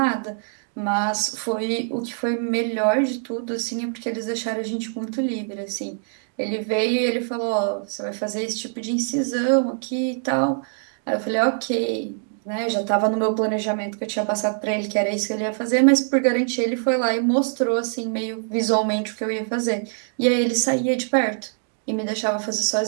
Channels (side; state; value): left; silent; digital silence